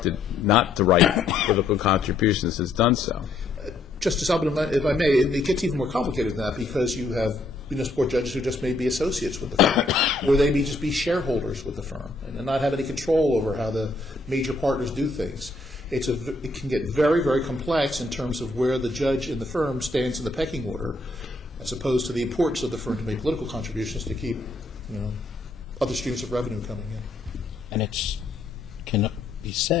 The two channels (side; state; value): right; quieter; 3.1 dB